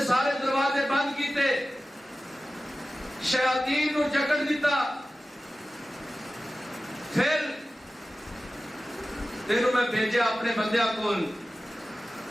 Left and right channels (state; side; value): normal; both; correlation 0.95